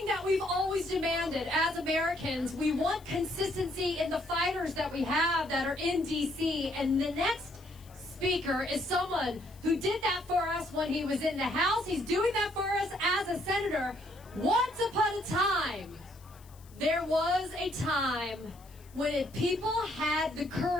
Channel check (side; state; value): left; noise; hiss, 26 dB below the sound